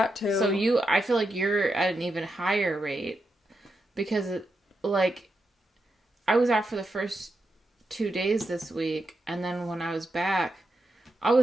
too. So I feel like you're at an even higher rate because, like, I was out for the first 2 days this week, and then when I was back,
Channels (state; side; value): normal; both; correlation 0.86